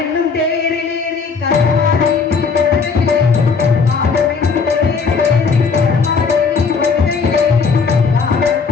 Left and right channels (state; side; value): quieter; right; 5.1 dB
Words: என்னும் தேரிலேறி கருமாறி